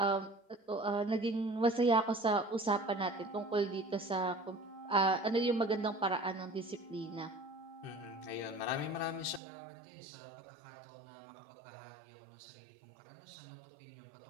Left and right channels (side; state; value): left; drops out; at 9.4 s